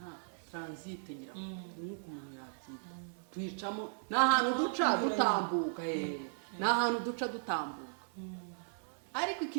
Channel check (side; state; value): left; silent; 53 dB below the other